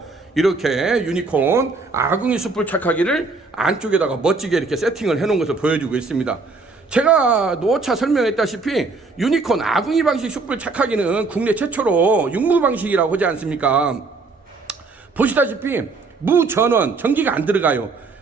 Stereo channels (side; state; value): left; quieter; 3.9 dB